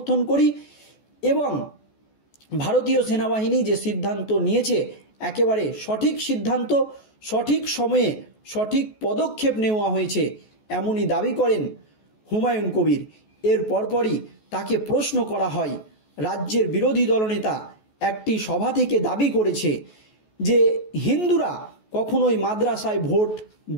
করি এবং ভারতীয় সেনাবাহিনী যে সিদ্ধান্ত নিয়েছে একেবারে সঠিক সিদ্ধান্ত, সঠিক সময়ে সঠিক পদক্ষেপ নেওয়া হয়েছে এমনই দাবি করেন হুমায়ুন কবির। এর পরপরই তাকে প্রশ্ন করা হয়। রাজ্যের বিরোধী দলনেতা একটি সভা থেকে দাবি করেছে যে হিন্দুরা কখনোই মাদ্রাসায় ভোট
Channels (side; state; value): right; late; 14 ms